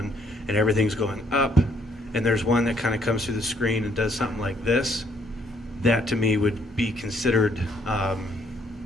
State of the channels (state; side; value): normal; both; correlation 0.67